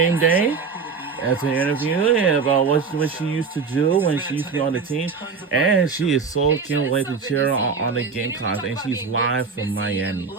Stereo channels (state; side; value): quieter; left; 5.2 dB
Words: Day as an interview about what she used to do when she used to be on the team. And she is so can't wait to cheer on the Gamecocks. And she's live from Miami.